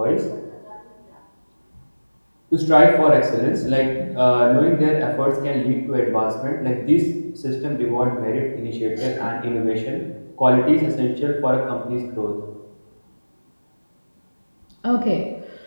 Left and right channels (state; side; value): inverted; both; correlation -1.00